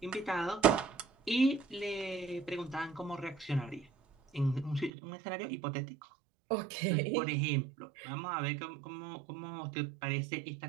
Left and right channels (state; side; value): drops out; left; at 4.9 s